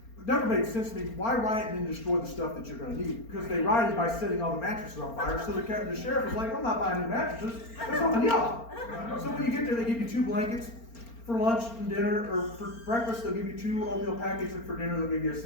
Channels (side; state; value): right; late; 4.4 ms